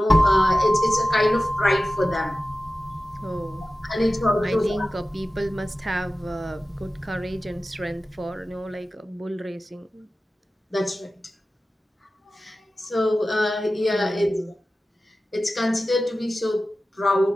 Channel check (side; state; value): both; normal; correlation 0.95